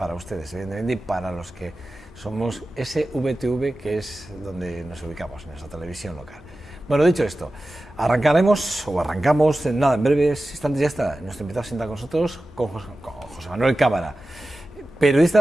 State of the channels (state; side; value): normal; both; correlation 0.95